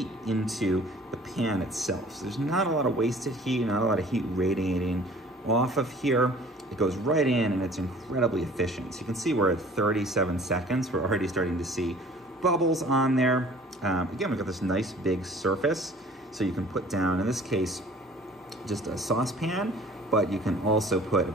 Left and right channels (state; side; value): normal; both; correlation 0.50